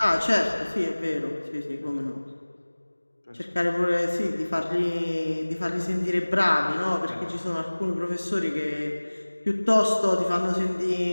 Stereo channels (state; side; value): inverted; both; correlation -1.00